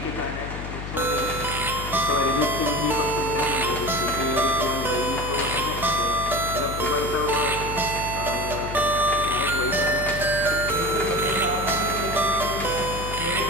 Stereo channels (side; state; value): left; noise; hum, 7 dB below the sound